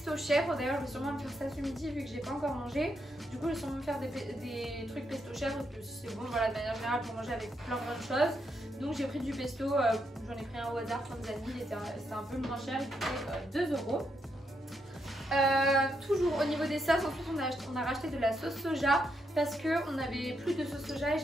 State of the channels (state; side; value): normal; both; correlation 0.80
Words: chèvre. D'ailleurs je vais sûrement me faire ça ce midi vu que j'ai pas encore mangé. Du coup je vais sûrement me faire des trucs pesto chèvre parce que c'est bon voilà de manière générale pour manger avec plein de choses. Donc j'ai pris du pesto, j'en ai pris un au hasard, comme vous avez dit, c'était un peu moins cher, il coûtait 2 €. Toujours au niveau des sauces, ensuite on a racheté de la sauce soja parce qu'on avait plus de sauce soja et